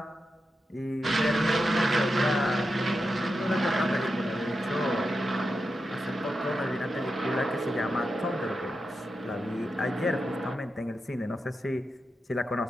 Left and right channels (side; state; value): both; normal; correlation 0.89